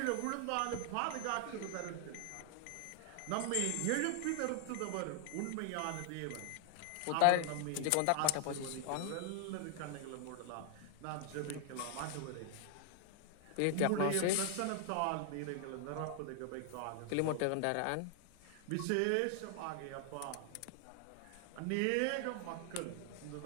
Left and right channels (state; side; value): different; both; correlation 0.00